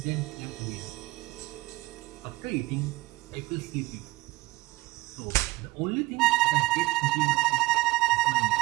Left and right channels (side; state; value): left; quieter; 20.2 dB